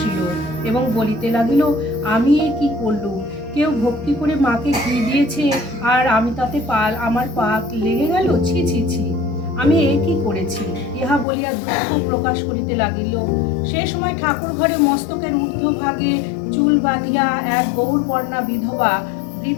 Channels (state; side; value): drops out; right; at 11.2 s